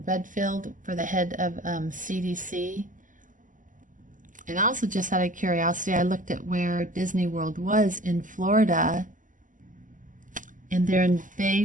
Redfield, for the head of CDC. And also, just out of curiosity, I looked at where Disney World was in Florida, and they're in Bay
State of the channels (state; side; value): late; left; 0.38 ms